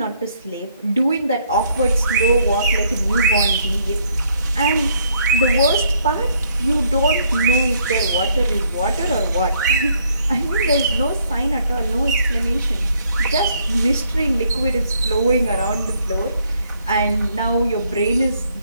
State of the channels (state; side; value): inverted; both; correlation -0.68